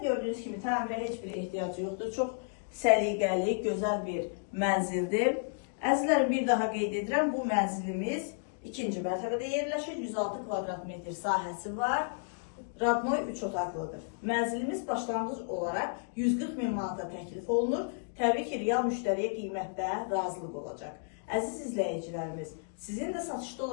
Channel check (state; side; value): silent; right; digital silence